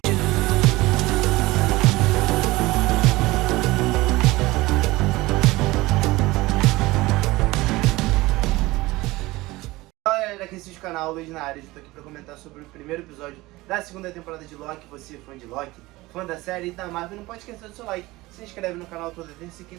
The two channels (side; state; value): left; quieter; 20.0 dB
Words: Fala galera, aqui é o canal Luiz na área. Eu tô aqui pra comentar sobre o primeiro episódio da segunda temporada de Loki. Você, fã de Loki, fã da série e da Marvel, não pode esquecer do seu like. Se inscreve no canal toda terça e